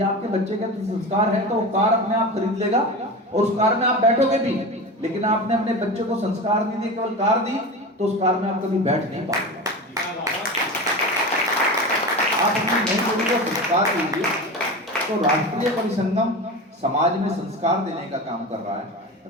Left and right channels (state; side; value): normal; both; correlation 0.27